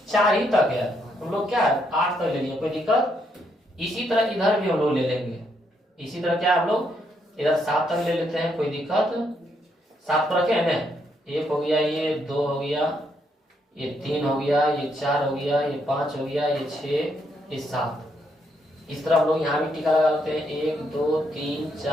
4 ही तक है। हम लोग क्या है 8 तक ले लिए, कोई दिक्कत। इसी तरह इधर भी हम लोग ले लेंगे। इसी तरह क्या हम लोग इधर 7 तक ले लेते हैं, कोई दिक्कत। 7 पर रखे है ना, 1 हो गया, ये 2 हो गया, ये 3 हो गया, ये 4 हो गया, ये 5 हो गया, ये 6, ये 7। इस तरह हम लोग यहाँ भी टीका लगा लेते हैं। 1 2 3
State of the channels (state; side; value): normal; both; correlation 0.76